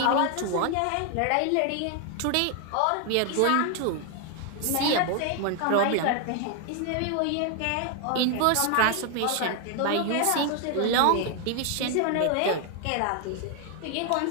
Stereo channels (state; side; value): different; both; correlation 0.01